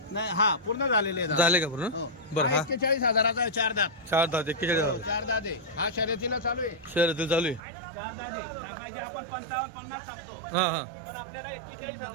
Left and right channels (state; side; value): drops out; left; at 7.6 s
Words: नाही हा पूर्ण झालेले आहे दादा. झाले का पूर्ण? हो. बरं हा हा 41,000चा आहे 4 दात. 4 दात 41,000 4 दात आहे. हा शर्यतीला चालू आहे. शहरातील चालू आहे. 4 दात आहे. सांगायचे आपण 55-50 सांगतो. हां हां पण आपल्याला